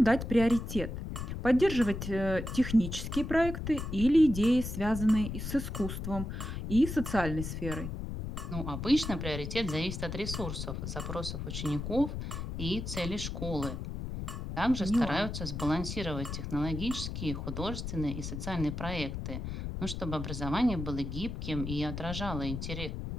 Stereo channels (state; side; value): noise; left; rumble, 5 dB below the sound